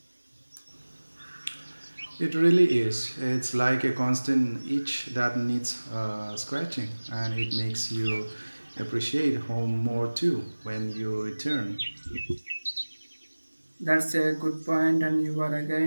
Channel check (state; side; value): inverted; both; correlation -1.00